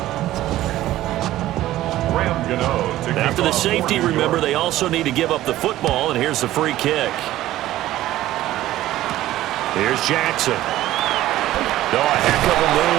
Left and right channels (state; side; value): quieter; left; 14.8 dB